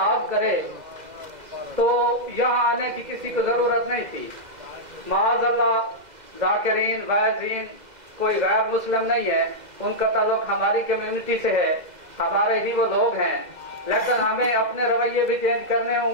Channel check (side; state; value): left; late; 2.0 ms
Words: करे तो यहाँ आने की किसी को जरूरत नहीं थी। माअज़ल्लाह ज़ाकिरीन वाइज़ीन कोई गैर मुस्लिम नहीं है, उनका ताल्लुक हमारी कम्युनिटी से है, हमारे ही वो लोग हैं। लेकिन हमें अपने रवैये भी चेंज करने